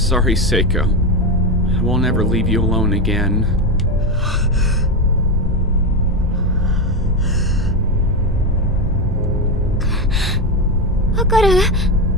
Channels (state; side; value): normal; both; correlation 0.13